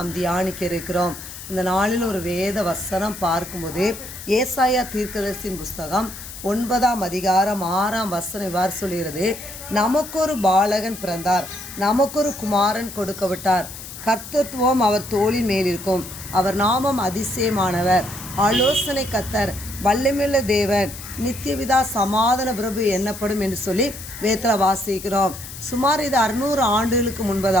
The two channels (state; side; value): noise; left; hiss, 12 dB below the sound